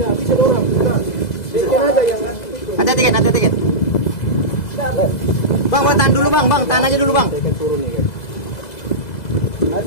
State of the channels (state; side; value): late; right; 2.0 ms